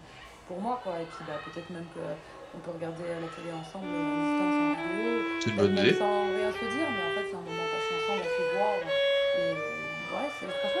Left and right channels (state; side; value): identical; both; correlation 1.00